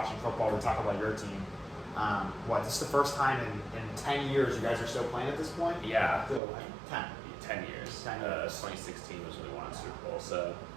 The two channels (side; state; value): left; drops out; at 6.4 s